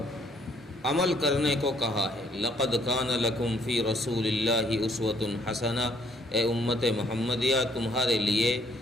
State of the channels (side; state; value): both; normal; correlation 0.66